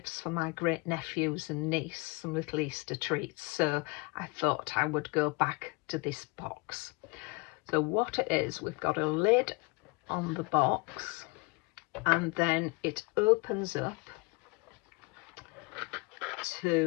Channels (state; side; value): quieter; right; 28.1 dB